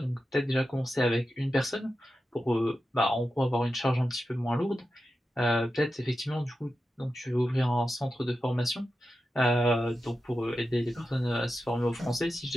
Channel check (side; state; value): both; normal; correlation 0.91